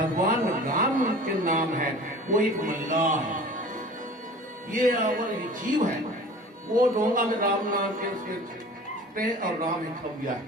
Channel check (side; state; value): both; normal; correlation 0.42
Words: राम के नाम है, वो एक मल्लाह है, ये और जीव है। वो डोंगा में राम नाम के उसके और राम है खबिया